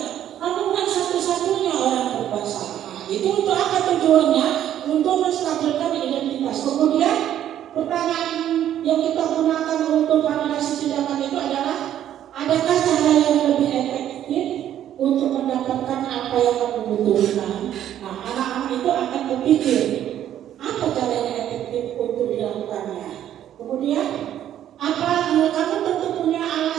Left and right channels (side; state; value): left; quieter; 11.1 dB